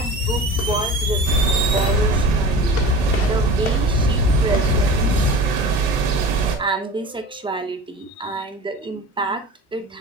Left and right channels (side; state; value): both; normal; correlation 0.36